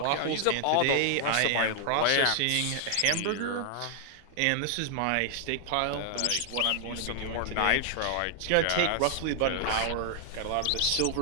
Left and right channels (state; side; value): different; both; correlation 0.00